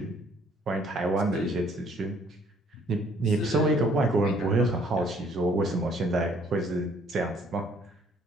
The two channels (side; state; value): both; normal; correlation 0.61